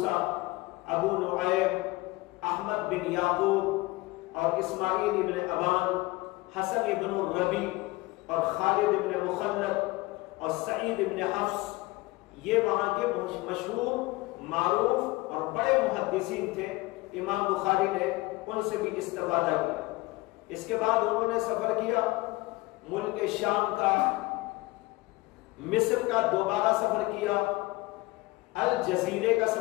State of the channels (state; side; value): quieter; right; 21.4 dB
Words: ابو نعیم، احمد بن یعقوب اور اسماعیل ابن ابان، حسن ابن الربی اور خالد ابن مخلد اور سعید ابن حفص، یہ وہاں کے مشہور، معروف اور بڑے محدثین تھے۔ امام بخاری نے ان سے بھی استفادہ کیا۔ اس کے بعد انہوں نے سفر کیا ملک شام کا، مصر کا دوبارہ سفر کیا، الجزیرے کا